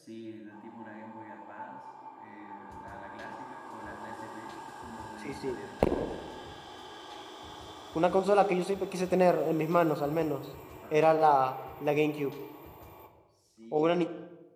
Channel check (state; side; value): identical; both; correlation 1.00